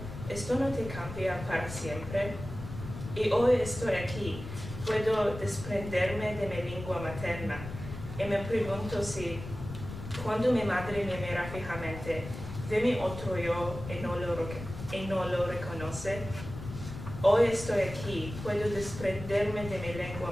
¿Esto no te cambia para siempre? Y hoy estoy aquí, puedo desprenderme de mi lengua materna, y me pregunto si, cuando mi madre me mira fijamente, ve mi otro yo y no lo reconoce. Hoy estoy aquí, puedo desprenderme de mi lengua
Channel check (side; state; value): left; noise; rumble, 10 dB below the sound